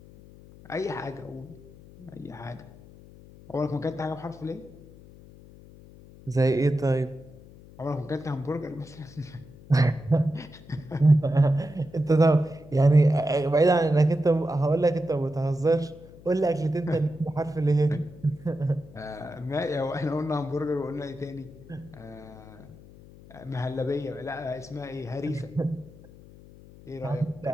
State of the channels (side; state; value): left; noise; hum, 21 dB below the sound